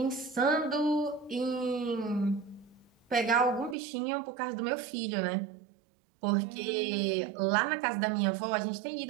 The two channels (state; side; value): drops out; left; at 3.8 s